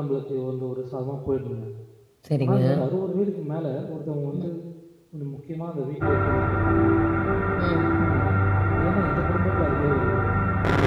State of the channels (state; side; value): identical; both; correlation 1.00